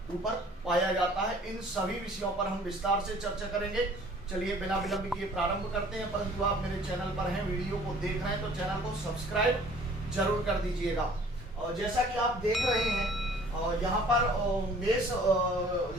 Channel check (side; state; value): both; normal; correlation 0.53